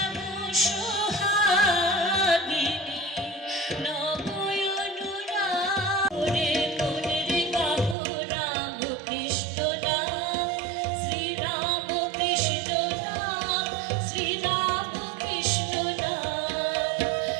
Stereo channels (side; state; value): left; drops out; at 8.0 s